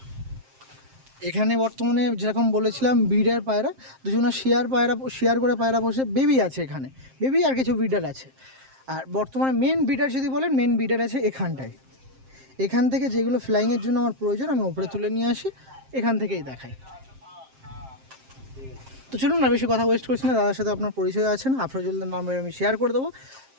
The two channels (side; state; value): left; late; 7.6 ms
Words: এখানে বর্তমানে যেরকম বলেছিলাম ব্রিডার পায়রা, দুজনা শেয়ার করে পায়রা বসে, বেবি আছে এখানে, বেবি আর কিছু ব্রিডার আছে। আর বর্তমানে মেন ব্রিডার যদি বলেন, মেন ব্রিডার আছে এখানটায়। এখান থেকে যেগুলো ফ্লাইংয়ের জন্য আমার প্রয়োজন আমি ওপরে তুলে নিয়ে আসি, এখান থেকেই দেখাই। তো চলুন না বেশি কথা ওয়েস্ট করছি না, দাদার সাথে আপনার পরিচয় আছে না, আফরাজুল্লার নাম্বার আমি শেয়ার করে দেবো।